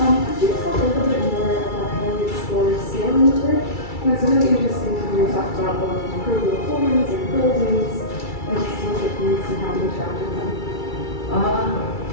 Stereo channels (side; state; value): right; late; 2.3 ms